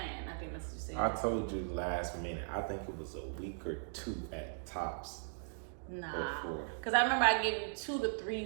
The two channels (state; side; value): silent; left; digital silence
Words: I think that's what you said. I told you last minute. I think it was a week or two at tops. Nah, because I remember I gave you 2 to